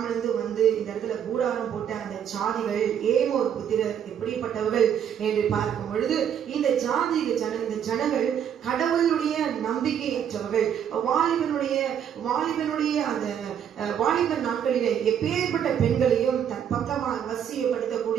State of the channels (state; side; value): quieter; left; 8.9 dB